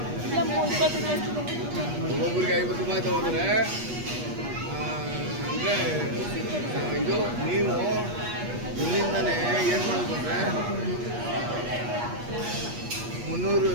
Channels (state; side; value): late; left; 8.3 ms